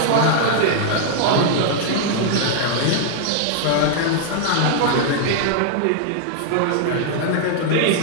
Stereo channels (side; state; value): both; different; correlation -0.01